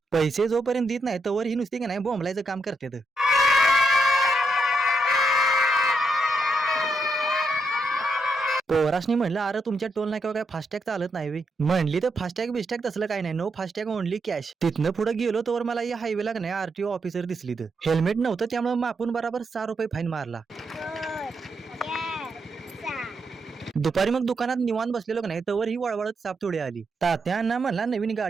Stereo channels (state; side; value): normal; both; correlation 0.82